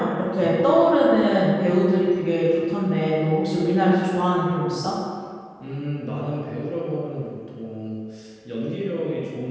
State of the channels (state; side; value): identical; both; correlation 1.00